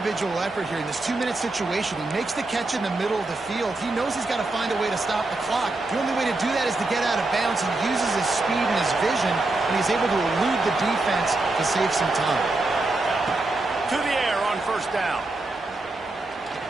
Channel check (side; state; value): left; quieter; 3.0 dB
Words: effort here in this 2-minute situation. He makes the catch in the middle of the field. He knows he's got to find a way to stop the clock. The only way to do that is to get out of bounds. He uses his speed and his vision, and he's able to elude the defense to save some time. To the air on 1st down.